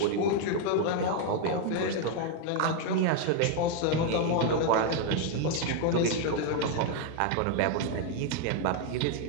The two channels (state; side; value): different; both; correlation 0.01